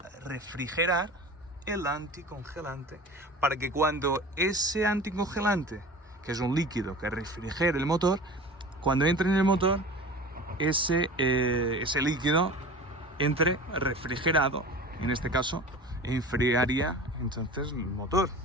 refrigerar el anticongelante, para que cuando ese anticongelante, que es un líquido que refrigera el motor, cuando entre en el motor, ese líquido entre refrigerado, en este caso enfriaría entonces el motor.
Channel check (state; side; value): normal; both; correlation 0.37